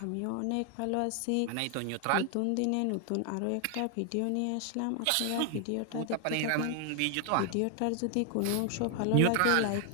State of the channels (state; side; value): different; both; correlation 0.00